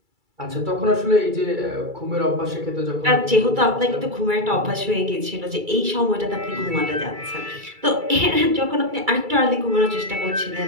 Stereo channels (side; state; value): left; late; 2.3 ms